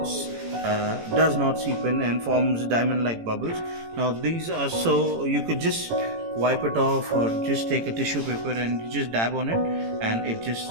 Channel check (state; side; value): late; left; 18 ms